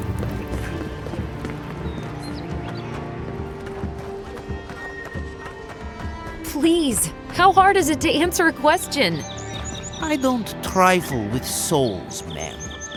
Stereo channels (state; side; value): identical; both; correlation 1.00